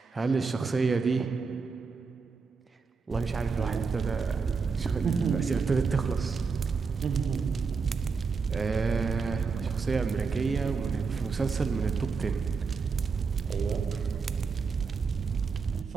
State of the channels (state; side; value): quieter; left; 5.0 dB